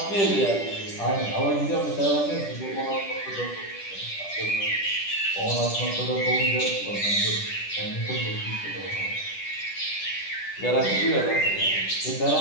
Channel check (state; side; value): late; right; 10 ms